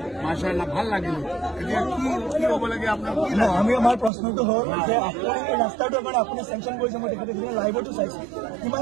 মাশাআল্লাহ ভাল লাগিল এতিয়া কি হ'ব লাগে আপোনাৰ আমি আমাৰ প্ৰশ্নটো হ'ল যে আপুনি এই ৰাস্তাটো মানে আপুনি চেংচন কৰিছে মই তেখেতে লাইভতো চাইছো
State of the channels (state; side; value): drops out; left; at 4.1 s